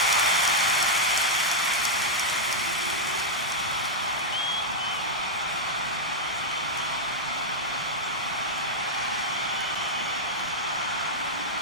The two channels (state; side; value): normal; both; correlation -0.04